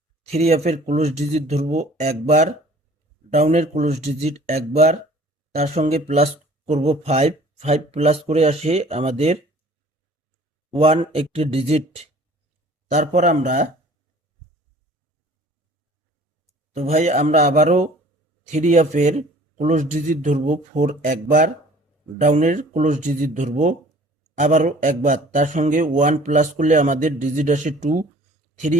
থ্রি এফের ক্লোজ ডিজিট ধরবো একবার, ডাউনের ক্লোজ ডিজিট একবার, তার সঙ্গে প্লাস করব 5। 5 প্লাস করে আসে আমাদের 1 একটি ডিজিট। তারপর আমরা ভাই আমরা আবারও থ্রি এফের ক্লোজ ডিজিট ধরবো 4 একবার, ডাউনের ক্লোজ ডিজিট ধরবো আবারও একবার, তার সঙ্গে 1 প্লাস করলে আমাদের ডিজিট আসে 2। থ্রি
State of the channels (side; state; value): both; normal; correlation 0.50